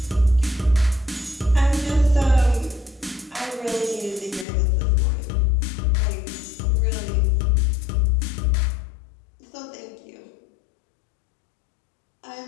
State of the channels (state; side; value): drops out; right; at 4.5 s